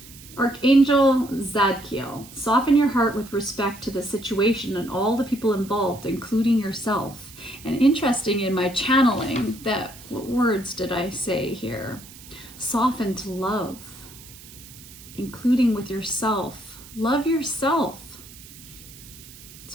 Archangel Zadkiel, soften your heart with respect to the situation and all the people involved, including yourself. And interesting in my channeling, what words did I say here? Soften to love, including with yourself. Love yourself.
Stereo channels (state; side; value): noise; right; hiss, 19 dB below the sound